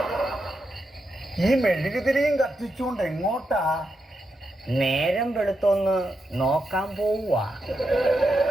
ഈ മെഴുകുതിരിയും കത്തിച്ചുകൊണ്ട് എങ്ങോട്ടാ? നേരം വെളുത്തൊന്ന് നോക്കാൻ പോവുക.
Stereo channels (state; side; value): normal; both; correlation 0.85